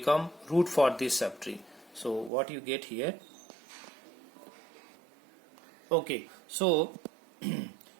root for this subtree. So what you get here? Okay, so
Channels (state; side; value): drops out; left; at 2.3 s